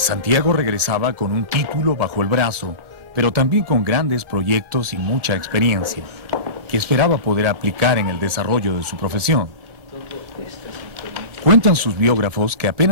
regresaba con un título bajo el brazo, pero también con grandes proyectos y mucha experiencia, que esperaba poder aplicar en el desarrollo de su profesión. Cuentan sus biógrafos que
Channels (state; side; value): late; left; 1.5 ms